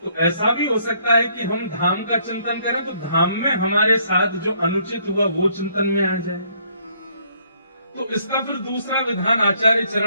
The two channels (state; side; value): inverted; both; correlation -0.67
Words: तो ऐसा भी हो सकता है कि हम धाम का चिंतन करें तो धाम में हमारे साथ जो अनुचित हुआ वो चिंतन में आ जाए। तो इसका फिर दूसरा विधान आचार्य